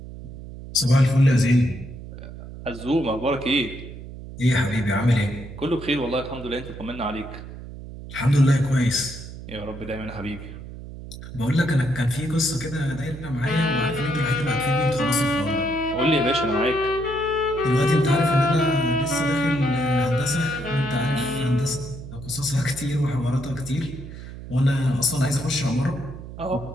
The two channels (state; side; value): noise; right; hum, 12 dB below the sound